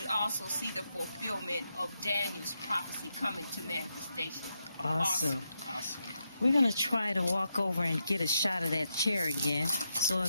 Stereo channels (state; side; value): inverted; both; correlation -0.84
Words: also see the fulfillment of Daniel's prophecy coming to manifestation. Awesome. We're going to try to walk over and get a shot of that chair again. So